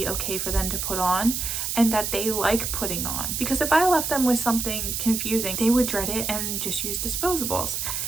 okay for them to put on and that they like putting on. Because if I left them with something confusing, they would dread it and just use disposables.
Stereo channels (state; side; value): noise; right; hiss, 2 dB below the sound